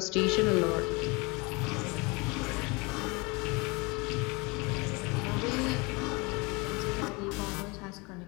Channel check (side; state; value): right; quieter; 27.4 dB